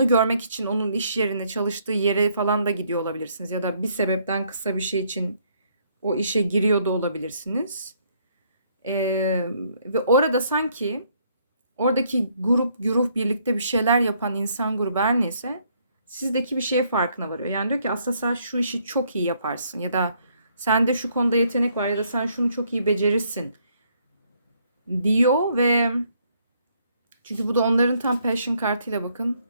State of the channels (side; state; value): both; inverted; correlation -0.69